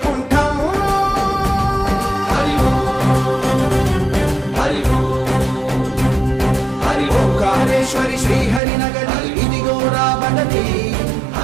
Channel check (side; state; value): left; drops out; at 8.6 s